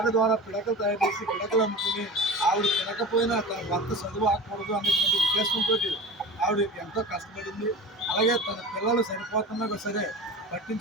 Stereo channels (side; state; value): both; normal; correlation 0.32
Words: ద్వారా పిడకలు తయారు చేసి పిడకలు అమ్ముకుని ఆవిడ తినకపోయినా తన భర్త చదువు ఆకూడదు అనేటువంటి ఉద్దేశంతో ఆవిడ ఎంతో కష్టపడింది. అలాగే తన పిల్లలు సరిపోతున్నా సరే